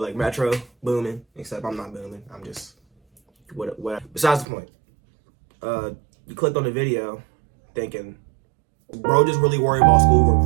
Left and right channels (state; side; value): drops out; left; at 4.5 s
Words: Metro, booming, except I'm not booming, I'm just, what. Besides the point, you clicked on the video thinking, bro just really worried about schoolwork